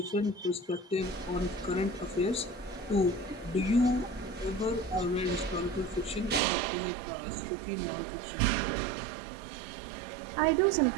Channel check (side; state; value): left; drops out; at 6.4 s